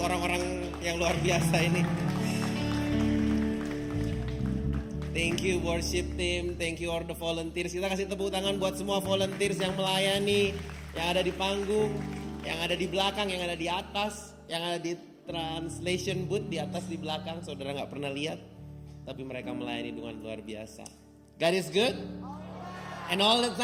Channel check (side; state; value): both; identical; correlation 1.00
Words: orang-orang yang luar biasa ini. Thank you worship team, thank you all the volunteers. Kita kasih tepuk tangan buat semua volunteers yang melayani, yang ada di panggung, yang ada di belakang, yang ada di atas, yang ada di translation booth di atas di belakang. Saudara nggak pernah lihat, tapi mereka melayani dengan luar biasa. God is good, and all the